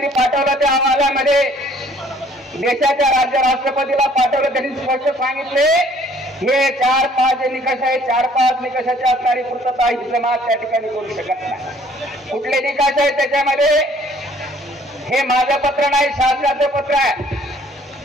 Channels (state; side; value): normal; both; correlation 0.58